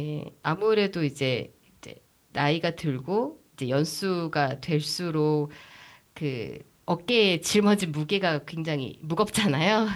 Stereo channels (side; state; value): both; identical; correlation 1.00